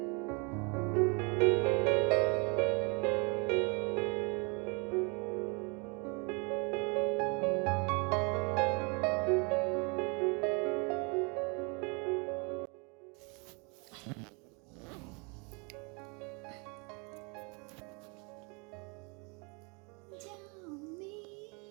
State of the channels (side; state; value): left; quieter; 32.3 dB